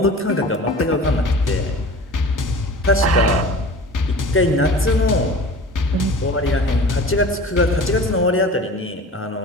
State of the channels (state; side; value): normal; both; correlation 0.40